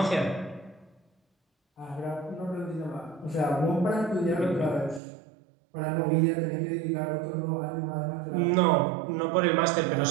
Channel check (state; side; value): drops out; left; at 5.0 s